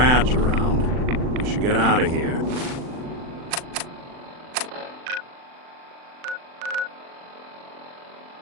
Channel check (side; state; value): left; late; 39 ms